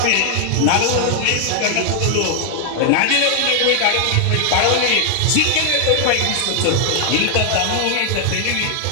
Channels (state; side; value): different; both; correlation 0.00